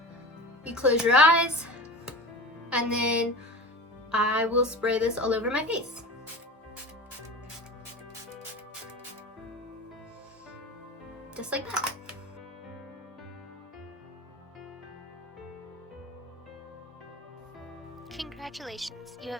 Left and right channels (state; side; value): normal; both; correlation 0.32